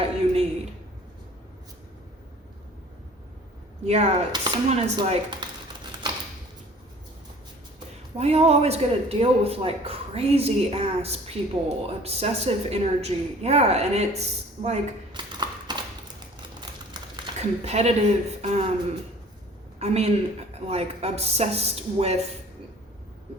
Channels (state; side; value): normal; both; correlation 0.49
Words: you need. Yeah, someone is like, why y'all always gotta deal with like crazy ass people, obsessive energy? Yeah, and it's like competitive, like obsessed with